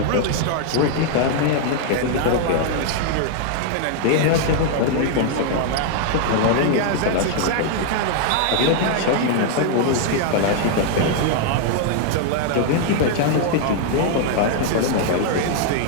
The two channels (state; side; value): different; both; correlation 0.00